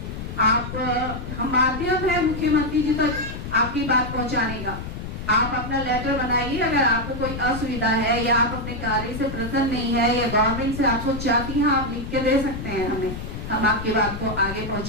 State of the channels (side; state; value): left; noise; rumble, 7 dB below the sound